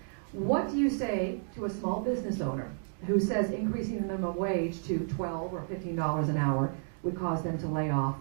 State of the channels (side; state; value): left; silent; digital silence